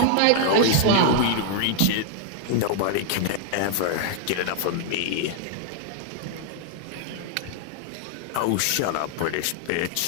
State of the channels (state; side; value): different; both; correlation 0.00